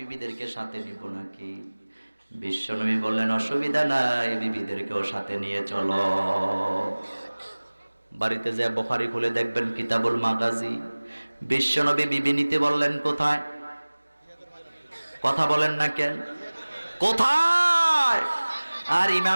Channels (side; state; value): both; inverted; correlation -1.00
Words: সাথে নিব নাকি? বিশ্বনবী বললেন, অসুবিধা নাই, বিবিদেরকেও সাথে নিয়ে চলো। বাড়িতে যে বুখারী খুলে দেখবেন কিতাবুল মাগাজি, বিশ্বনবী বিবি নিতে বললেন কোথায়? কথা বলেন না কেন? কোথায়? আর